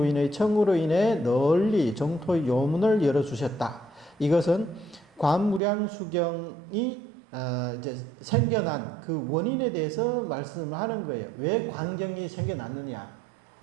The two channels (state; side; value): drops out; left; at 5.6 s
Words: 청으로 인해 널리 정토의 요문을 열어주셨다. 이것은 관무량수경이 이제 생겨난 그 원인에 대해서 말씀을 하는 거예요. 왜 광경이 생겨났느냐?